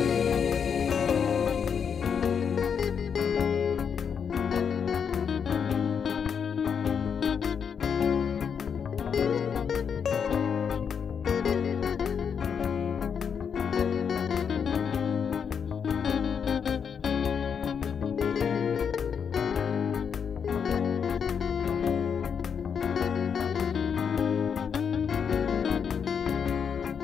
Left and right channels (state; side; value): quieter; right; 7.0 dB